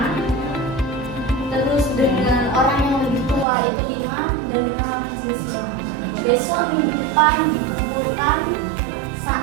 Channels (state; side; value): drops out; left; at 3.5 s